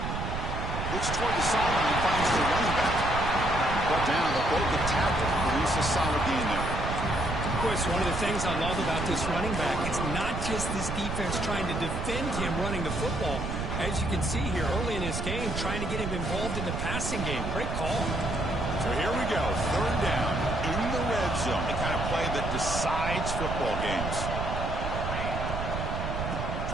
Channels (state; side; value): noise; right; rumble, 3 dB below the sound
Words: Looks toward the sideline, finds the running back. Brought down, but both the tackle produce a solid gain there. Of course, one of the things I love about this running back, it's not just this defense trying to defend him running the football. As you can see here early in this game, trying to get him involved in the passing game. Great call. So here we go, third down in the red zone. The kind of play that decides football games.